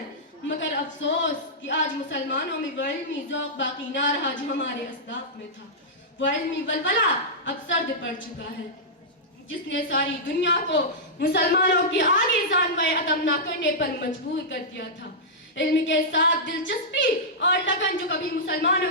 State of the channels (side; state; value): both; normal; correlation -0.12